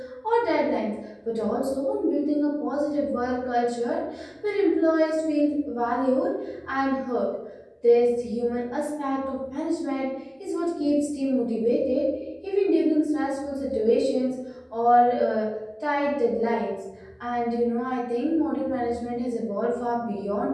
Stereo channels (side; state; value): both; identical; correlation 1.00